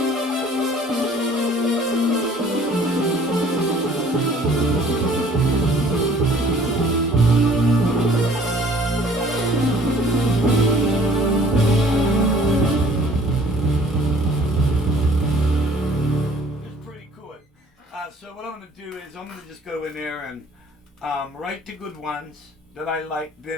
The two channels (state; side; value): normal; both; correlation 0.54